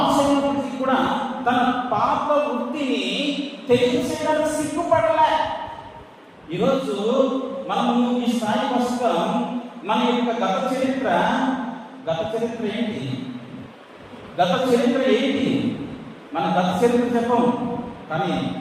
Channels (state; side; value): identical; both; correlation 1.00